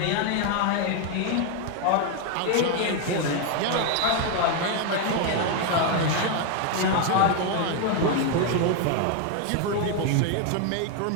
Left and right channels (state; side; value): different; both; correlation 0.01